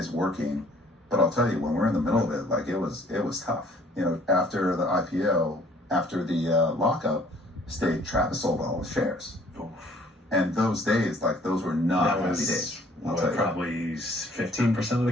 working. But I'll tell you, when we're in the middle of it, like it was tough. After the IPO, after the lockup stage, Travis sold all his shares. Oof. And those days, those were not happy days. Probably 15% of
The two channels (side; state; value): both; normal; correlation 0.58